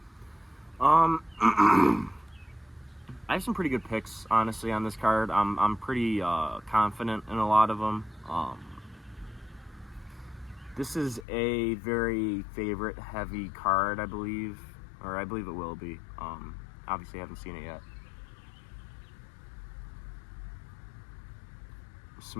I have some pretty good picks, honestly, on this card. I'm pretty confident in a lot of them. This is a very favorite-heavy card, I believe, or I believe it will be. Obviously, I haven't seen it yet.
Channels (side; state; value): right; drops out; at 11.2 s